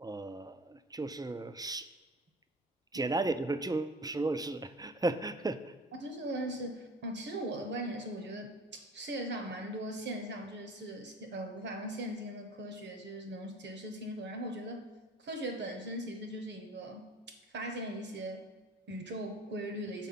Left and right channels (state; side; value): normal; both; correlation 0.44